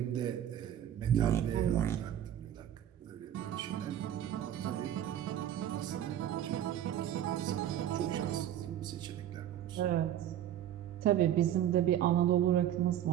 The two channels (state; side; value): quieter; left; 11.1 dB